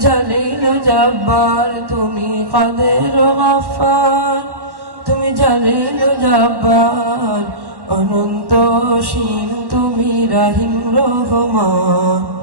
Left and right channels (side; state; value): left; late; 1.1 ms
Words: জালিল জব্বার, তুমি কাদের গফফার, তুমি জালিল জব্বার, অনন্ত অসীম তুমি রহিম রহমান।